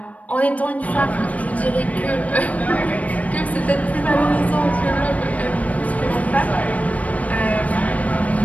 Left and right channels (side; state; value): right; late; 0.069 ms